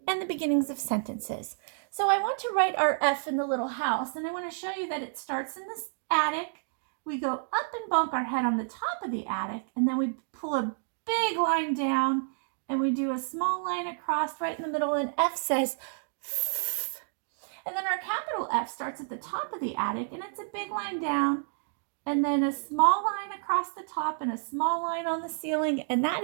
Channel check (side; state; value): left; silent; digital silence